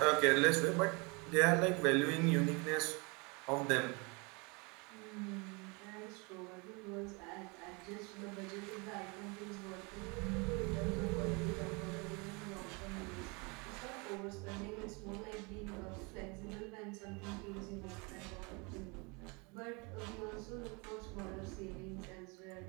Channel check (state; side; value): quieter; left; 29.6 dB